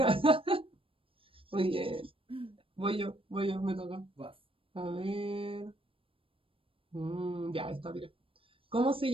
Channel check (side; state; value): left; late; 0.26 ms